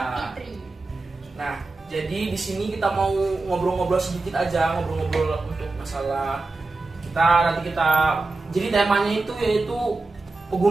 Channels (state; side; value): quieter; left; 3.4 dB